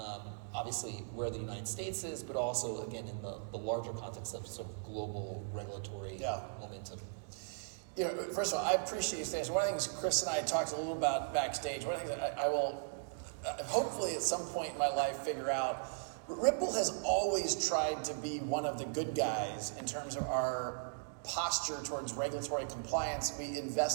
obviously where the United States is, but also, again, in the larger context of sort of global regulatory momentum. You know, first of all, I appreciate you saying this. One of the things Chris and I talked a little about backstage, one of the things that I will hopefully at some point in my life figure out, Ripple has always tried to be one of the good guys in terms of our posture towards regulatory compliance. We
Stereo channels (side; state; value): left; silent; digital silence